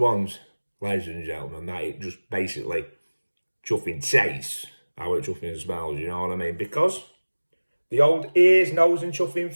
ladies and gentlemen, that it just basically chuffing tastes how it chuffing smells, you know what I mean? Because the old ears, nose and chuffing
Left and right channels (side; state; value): both; inverted; correlation -1.00